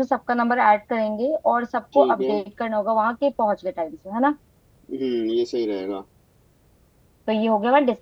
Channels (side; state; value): both; identical; correlation 1.00